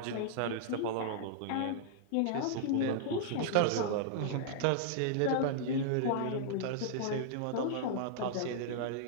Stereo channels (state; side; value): different; both; correlation -0.02